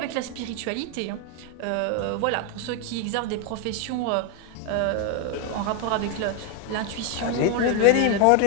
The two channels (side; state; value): both; different; correlation 0.01